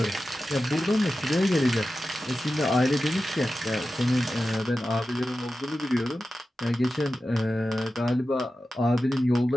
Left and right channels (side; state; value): both; normal; correlation 0.93